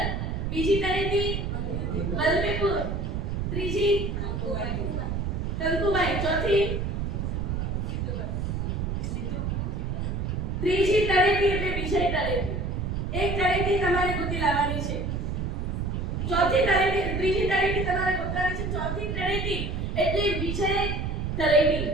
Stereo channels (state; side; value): noise; right; rumble, 1 dB below the sound